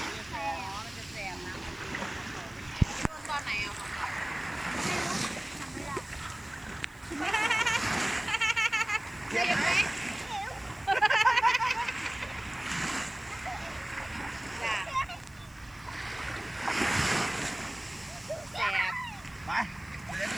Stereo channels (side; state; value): right; noise; hiss, 28 dB below the sound